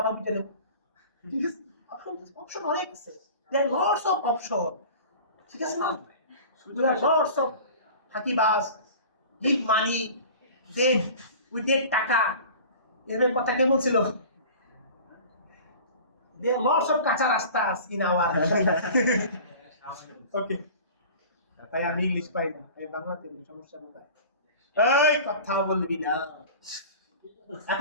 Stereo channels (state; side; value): inverted; both; correlation -0.40